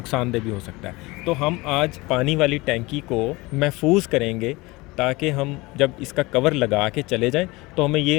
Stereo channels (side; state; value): right; quieter; 22.7 dB